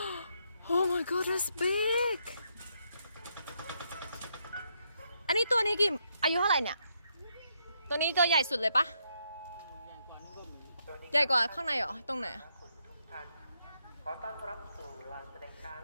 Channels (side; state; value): both; inverted; correlation -0.77